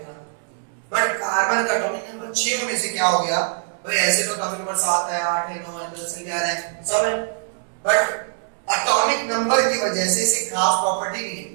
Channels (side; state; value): left; silent; digital silence